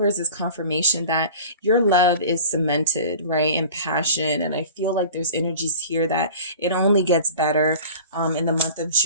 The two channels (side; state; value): both; inverted; correlation -0.40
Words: is confirmation that your love is cemented, right, in passion. And I feel like there's energies here that it only gets better in the month of